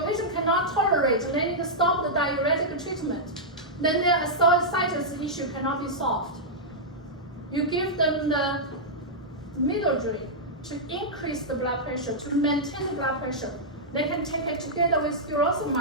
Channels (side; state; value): both; normal; correlation -0.09